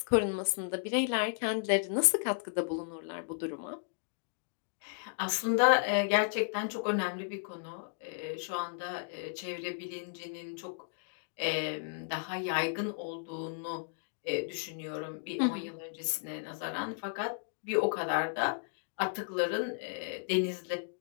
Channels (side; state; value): right; silent; digital silence